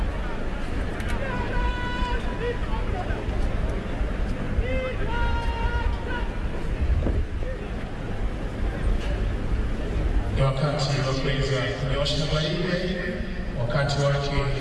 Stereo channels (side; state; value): both; identical; correlation 1.00